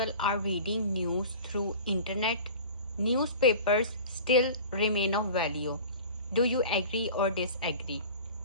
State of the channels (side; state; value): both; inverted; correlation -0.39